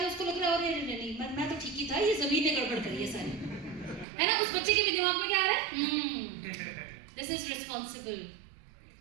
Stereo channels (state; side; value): drops out; left; at 4.0 s